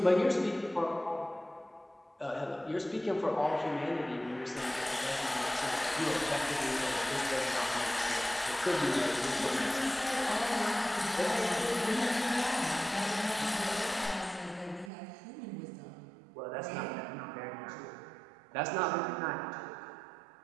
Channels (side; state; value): left; drops out; at 14.9 s